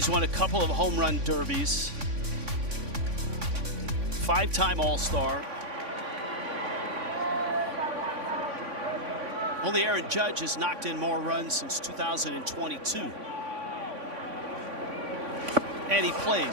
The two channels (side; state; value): left; late; 3.5 ms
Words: won a couple of home run derbies. 5-time All-Star. Only Aaron Judge has knocked in more runs since 2022. And he